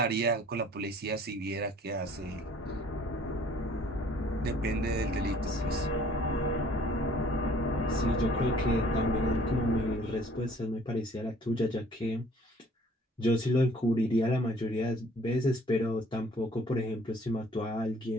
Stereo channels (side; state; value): both; normal; correlation 0.56